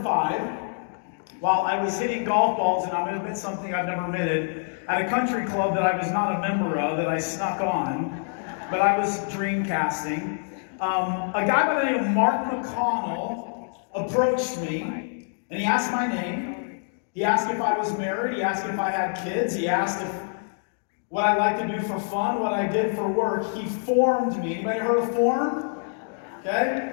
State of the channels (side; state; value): right; silent; digital silence